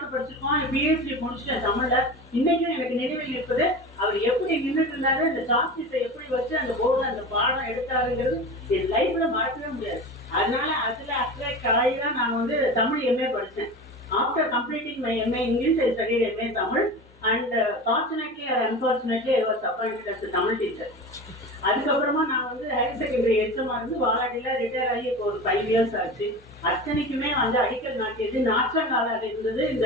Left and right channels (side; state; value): both; normal; correlation 0.30